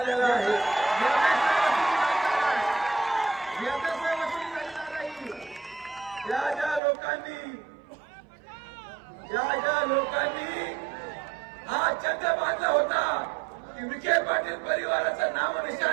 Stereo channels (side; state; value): left; drops out; at 6.8 s